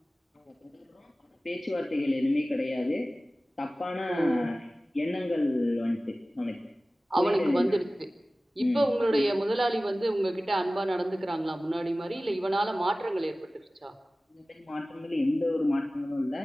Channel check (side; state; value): both; normal; correlation 0.97